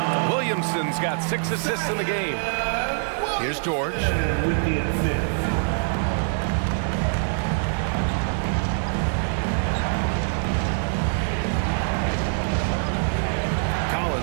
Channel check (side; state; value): left; silent; digital silence